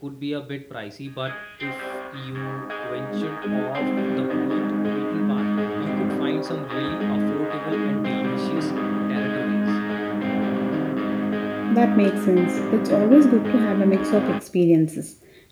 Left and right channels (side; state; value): both; identical; correlation 1.00